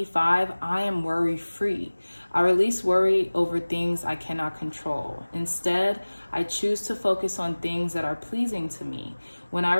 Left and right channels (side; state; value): both; inverted; correlation -1.00